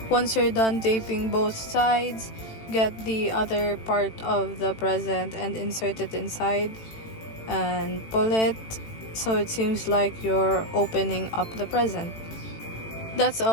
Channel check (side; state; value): right; late; 18 ms